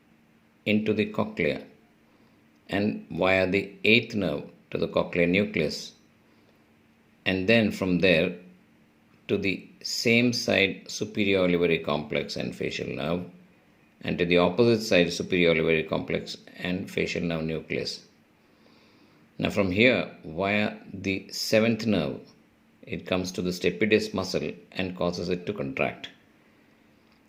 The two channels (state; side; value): identical; both; correlation 1.00